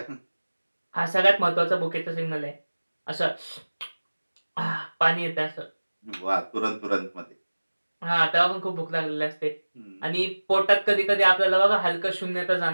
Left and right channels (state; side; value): inverted; both; correlation -1.00